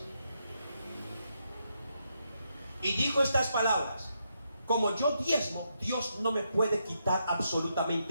Y dijo estas palabras: como yo diezmo, Dios no me puede quitar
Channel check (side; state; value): both; inverted; correlation -0.81